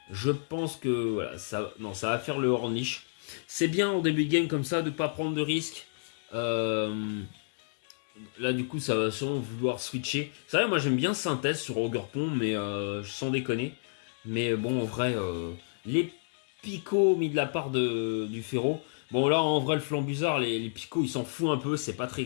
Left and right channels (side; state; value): right; silent; 58 dB below the other